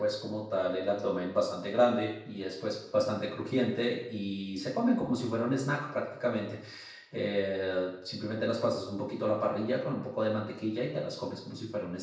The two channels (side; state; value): both; identical; correlation 1.00